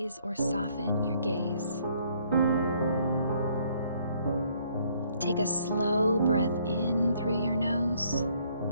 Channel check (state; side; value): inverted; both; correlation -0.65